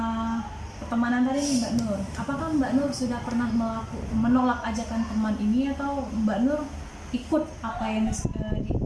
pertemanan tadi nih Mbak Nur, apakah Mbak Nur sudah pernah menolak ajakan teman ini, atau Mbak Nur ikut apa yang disuruh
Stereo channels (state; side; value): identical; both; correlation 1.00